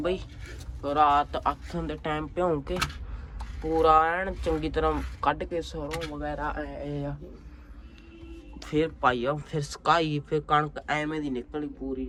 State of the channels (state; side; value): identical; both; correlation 1.00